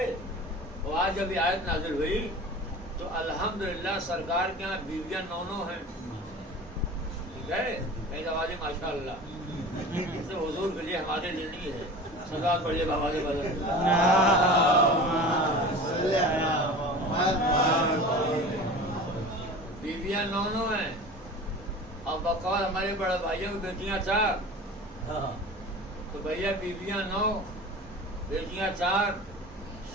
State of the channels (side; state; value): both; normal; correlation 0.37